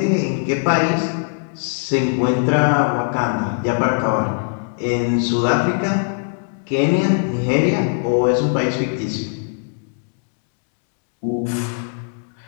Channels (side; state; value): right; silent; digital silence